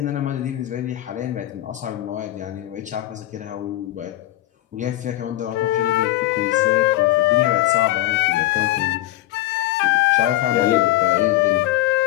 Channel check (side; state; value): right; quieter; 15.0 dB